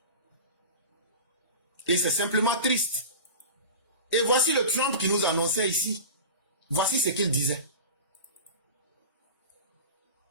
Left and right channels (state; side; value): inverted; both; correlation -0.31